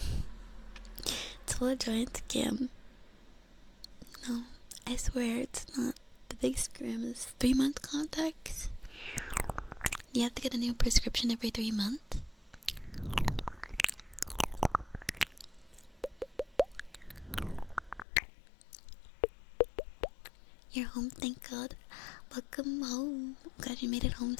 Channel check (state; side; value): drops out; right; at 18.1 s